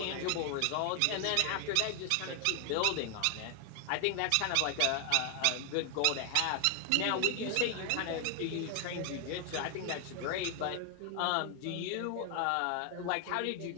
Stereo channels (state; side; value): different; both; correlation 0.00